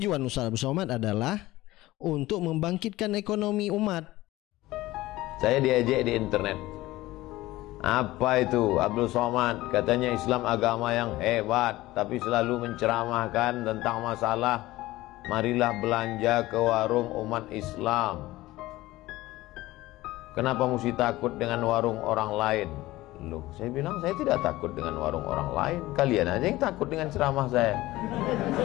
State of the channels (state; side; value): quieter; right; 17.7 dB